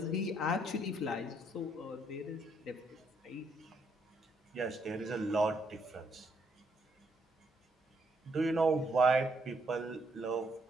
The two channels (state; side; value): normal; both; correlation 0.73